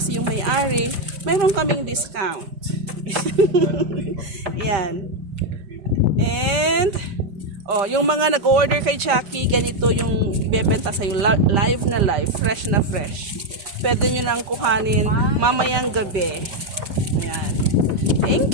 yung may-ari, mayroon kaming discount. Yan. And yung mga nag-order kay Jackie, ganito yung ibebenta sa'yo, live na live, fresh na fresh. Pwede nyo nang kuhanin mamayang gabi. Ayan.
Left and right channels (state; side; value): late; left; 5.1 ms